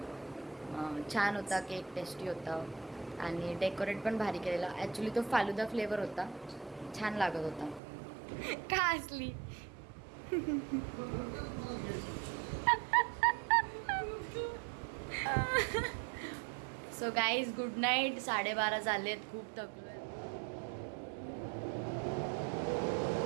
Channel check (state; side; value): drops out; left; at 7.8 s